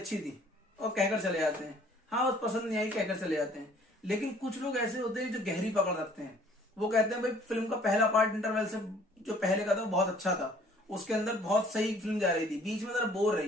थी, और कहकर चले जाते हैं, हाँ बस पसंद नहीं आई, कहकर चले जाते हैं। लेकिन कुछ लोग ऐसे होते हैं जो गहरी पकड़ रखते हैं। वो कहते हैं भाई फिल्म का पहला पार्ट इंटरवल से जो पहले का था वो बहुत अच्छा था, उसके अंदर बहुत सही फिल्म जा रही थी, बीच में जरा बोर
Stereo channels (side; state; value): both; normal; correlation 0.56